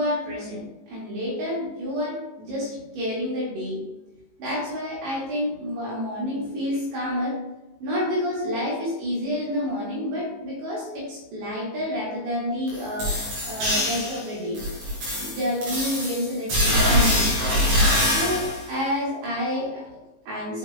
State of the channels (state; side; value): late; left; 19 ms